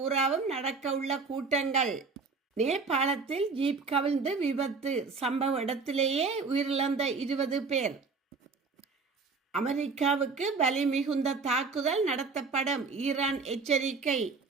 நடக்க உள்ள கூட்டங்கள். நேபாளத்தில் ஜீப் கவிழ்ந்து விபத்து, சம்பவ இடத்திலேயே உயிரிழந்த 20 பேர். அமெரிக்காவுக்கு வலி மிகுந்த தாக்குதல் நடத்தப்படும், ஈரான் எச்சரிக்கை.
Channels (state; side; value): quieter; left; 4.5 dB